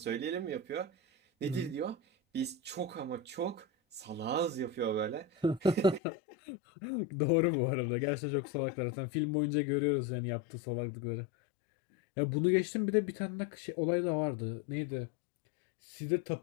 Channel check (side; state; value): right; drops out; at 6.0 s